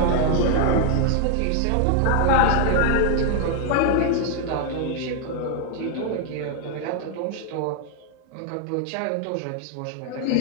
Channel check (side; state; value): both; different; correlation 0.00